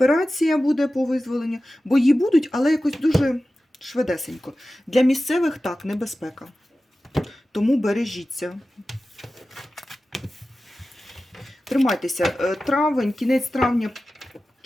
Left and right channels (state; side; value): normal; both; correlation 0.95